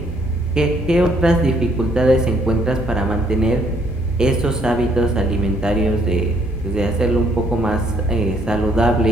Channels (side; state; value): both; normal; correlation 0.66